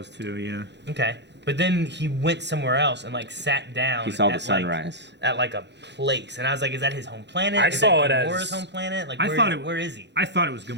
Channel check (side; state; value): left; late; 0.51 ms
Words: too, yeah. Okay. But then he went somewhere else and, like, sat down. He saw the at, sunrise. At, like, a place. And I was like, is that his home planet? I Is saw that it as- Gamora's home planet? Like, I where, thought it- where is he? I thought it was